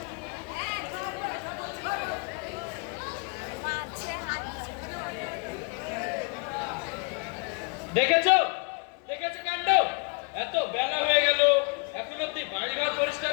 দেখেছো দেখেছো কাণ্ড, এত বেলা হয়ে গেল এখন অব্দি বাড়ি ঘর পরিষ্কার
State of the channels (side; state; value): right; quieter; 33.5 dB